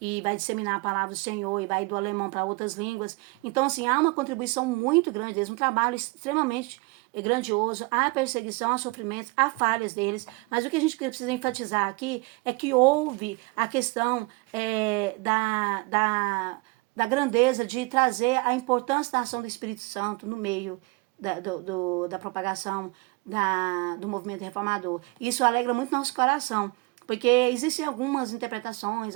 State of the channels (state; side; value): quieter; left; 27.2 dB